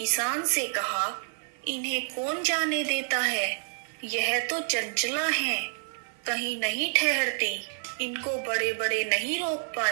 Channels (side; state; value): left; silent; 59 dB below the other